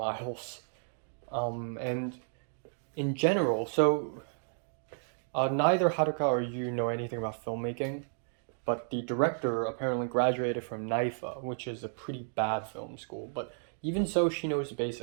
And in general, so neither Haruka or you know anything about filmmaking, but the director apparently graduated from NIFA, which is a pretty bad film school. But even so, she knows the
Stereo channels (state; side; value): silent; left; digital silence